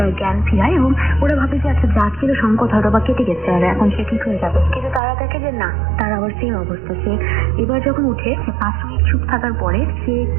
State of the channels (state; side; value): drops out; left; at 5.0 s